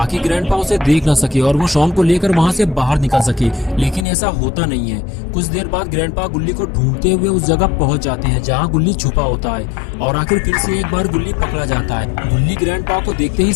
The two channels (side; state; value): right; drops out; at 4.0 s